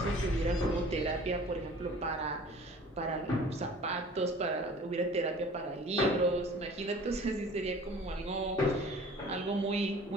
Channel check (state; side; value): normal; both; correlation 0.47